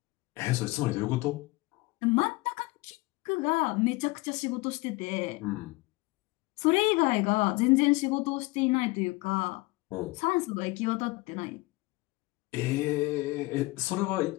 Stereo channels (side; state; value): right; quieter; 22.8 dB